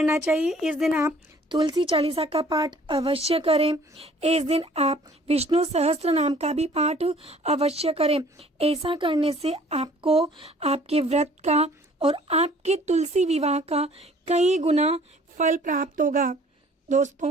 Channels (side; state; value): both; normal; correlation 0.54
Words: चाहिए। इस दिन आप तुलसी चालीसा का पाठ अवश्य करें। इस दिन आप विष्णु सहस्त्र नाम का भी पाठ अवश्य करें। ऐसा करने से आपको आपके व्रत का और आपके तुलसी विवाह का कई गुना फल प्राप्त होगा।